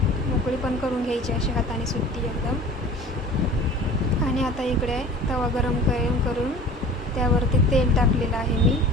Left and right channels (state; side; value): normal; both; correlation 0.42